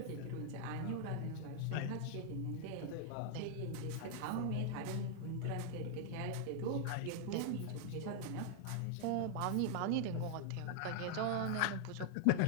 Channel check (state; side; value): different; both; correlation -0.01